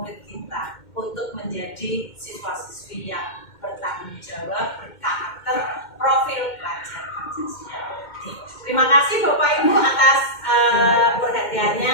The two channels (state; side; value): late; right; 2.1 ms